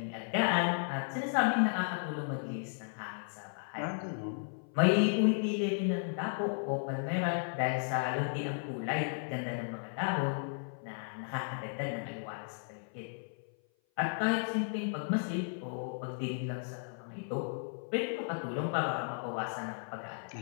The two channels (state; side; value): silent; right; 55 dB below the other